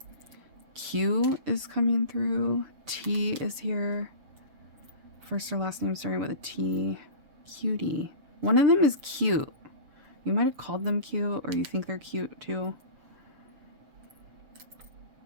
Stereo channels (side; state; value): left; late; 6.8 ms